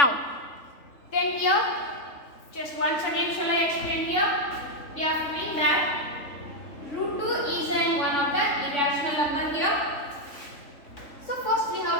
then here, just once again shall I explain here? We are proving that root 2 is one of the irrational number here. So first we have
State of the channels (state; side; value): late; right; 3.5 ms